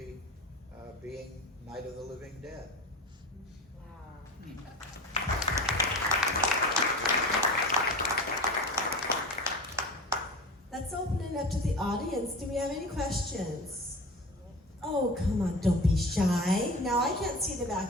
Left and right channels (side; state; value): both; normal; correlation 0.33